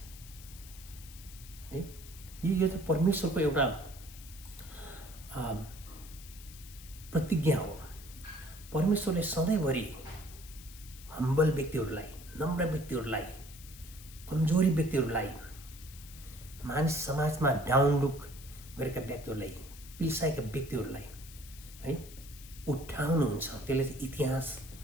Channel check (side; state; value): left; noise; hiss, 17 dB below the sound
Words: है। यो चाहिँ परमेश्वरको एउटा प्रतिज्ञा हो। परमेश्वरले सधैँभरि हम्बल व्यक्तिहरूलाई, नम्र व्यक्तिहरूलाई, कमजोरी व्यक्तिहरूलाई, मानिस समाजमा डाउन लुक गरेका व्यक्तिहरूलाई, पिल्साएका व्यक्तिहरूलाई है उठाउनुहुन्छ। त्यसले चाहिँ इतिहास